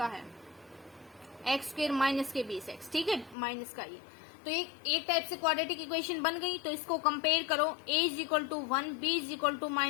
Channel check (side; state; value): right; drops out; at 3.4 s